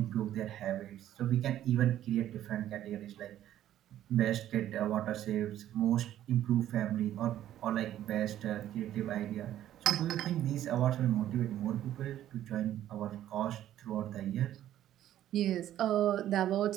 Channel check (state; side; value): quieter; left; 12.2 dB